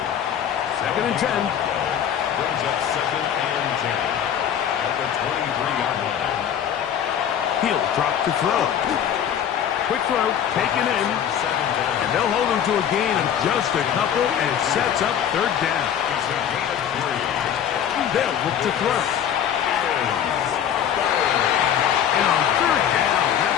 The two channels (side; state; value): right; quieter; 9.2 dB